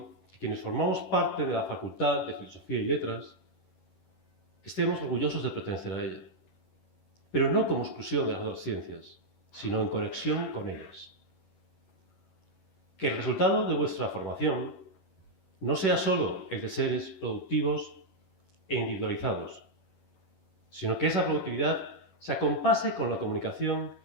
que quienes formamos parte de la Facultad de Filosofía y Letras estemos orgullosos de pertenecer a ella, pero no como exclusión de las otras ciencias, sino en conexión con ellas. Que el resultado de vuestra formación no sea solo el de seres productivos e individualizados, sino que esa productividad se acompase con la comunicación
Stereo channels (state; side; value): late; right; 11 ms